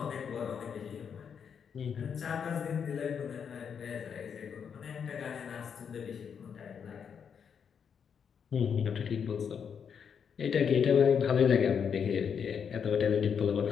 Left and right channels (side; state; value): right; quieter; 7.1 dB